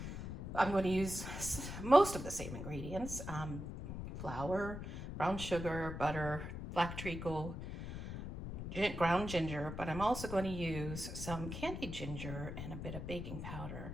I'm going to use most of the same ingredients. Flour, brown sugar, butter, black treacle, ground ginger, but I'm also going to use some candied ginger and a bit of baking powder.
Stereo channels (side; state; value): left; noise; rumble, 7 dB below the sound